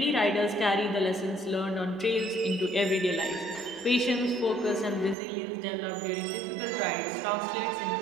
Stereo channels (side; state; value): left; drops out; at 5.2 s